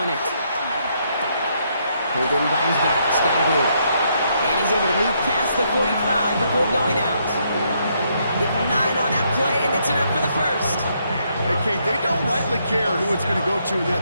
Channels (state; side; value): inverted; both; correlation -0.74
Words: it. Pulled in by his back, Scatterboo. And he's able to move past the 45 before going out. Give him 9 on that play, and it's enough for the first. Hey, Kate, they don't rightly care who it's going to go to in